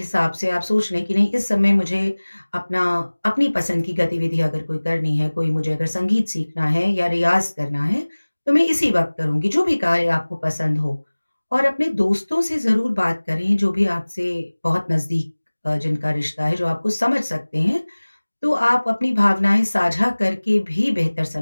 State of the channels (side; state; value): both; inverted; correlation -1.00